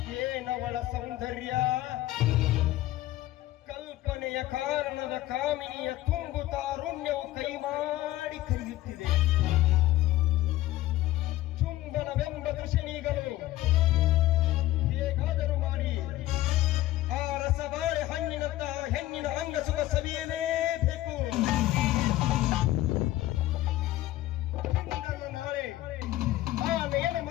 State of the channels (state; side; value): quieter; right; 15.7 dB